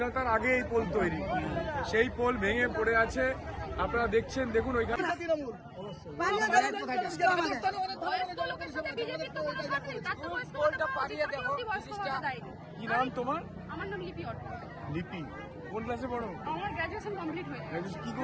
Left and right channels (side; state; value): both; identical; correlation 1.00